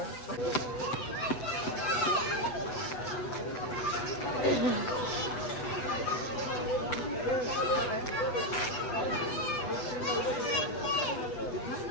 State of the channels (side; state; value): right; late; 7.8 ms